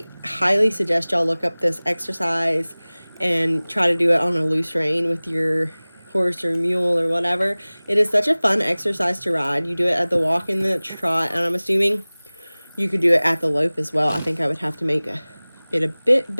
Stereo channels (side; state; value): both; inverted; correlation -1.00